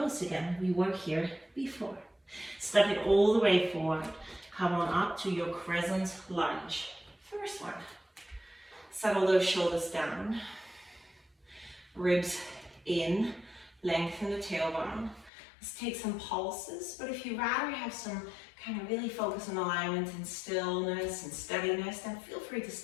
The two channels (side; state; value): right; drops out; at 15.3 s